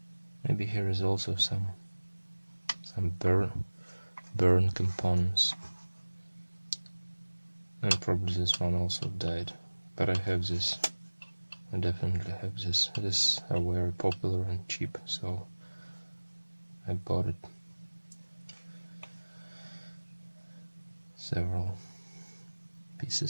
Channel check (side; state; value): both; inverted; correlation -1.00